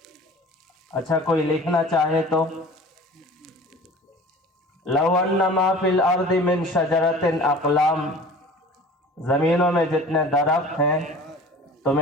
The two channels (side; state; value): both; normal; correlation 0.43